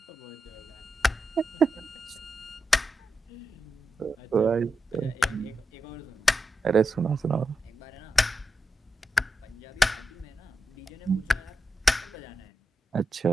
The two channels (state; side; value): normal; both; correlation 0.87